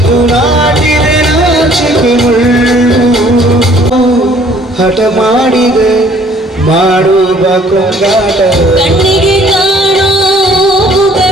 ಹಠ ಮಾಡಿದೆ ಮಾಡುವ ಕೊಂಗಾಟ ಕಣ್ಣಿಗೆ ಕಾಣೋ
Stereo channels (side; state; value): both; normal; correlation 0.58